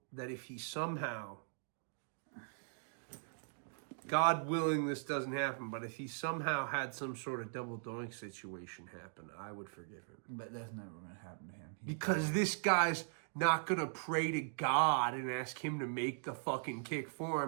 that if he somehow, God willing, this doesn't happen, but if he somehow had some sort of double doink situation happen, I would forgive him. But that's never going to happen to him. He's Because this guy's not going to pray to God and ask him to make the fucking kick for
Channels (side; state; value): left; silent; digital silence